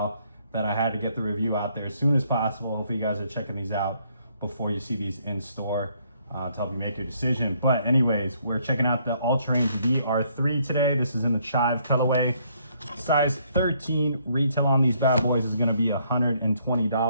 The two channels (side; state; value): both; inverted; correlation -0.68